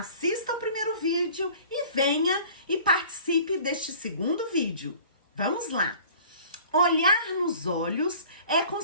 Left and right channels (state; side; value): inverted; both; correlation -0.47